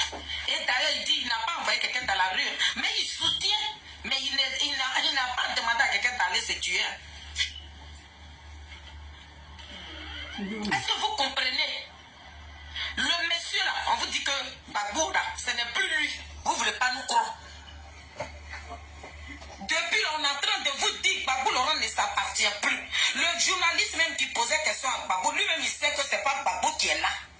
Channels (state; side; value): identical; both; correlation 1.00